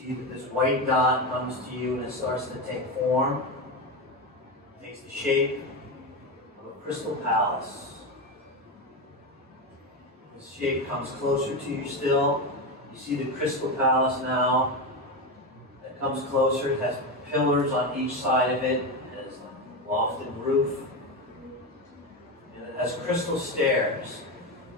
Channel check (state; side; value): normal; both; correlation 0.16